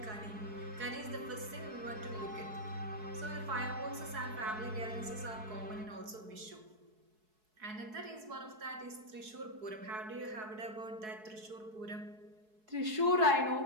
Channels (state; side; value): late; left; 4.7 ms